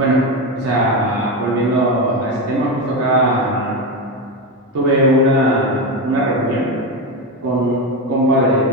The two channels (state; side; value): normal; both; correlation 0.15